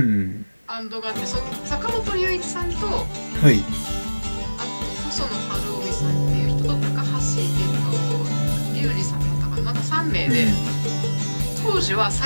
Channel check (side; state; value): both; inverted; correlation -1.00